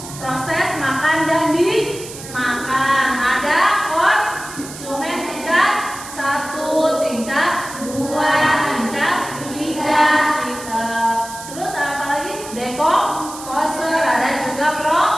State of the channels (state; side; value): noise; right; hiss, 13 dB below the sound